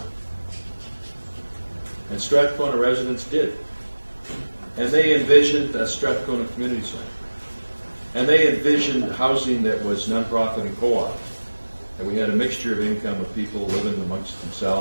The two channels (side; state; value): both; inverted; correlation -1.00